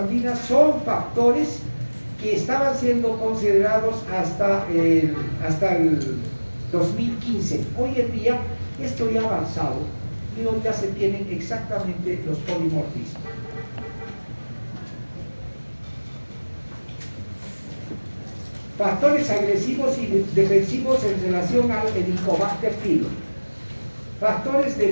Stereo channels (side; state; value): both; inverted; correlation -1.00